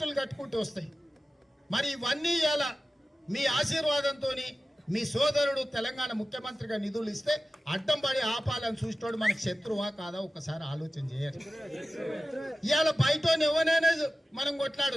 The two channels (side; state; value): both; normal; correlation 0.95